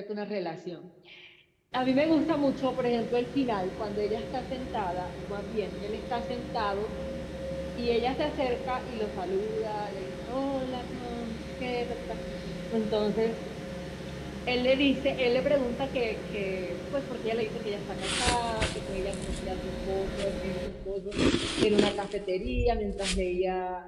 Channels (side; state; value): both; identical; correlation 1.00